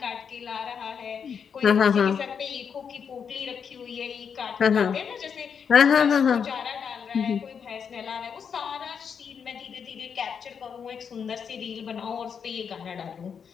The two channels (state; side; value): quieter; right; 6.9 dB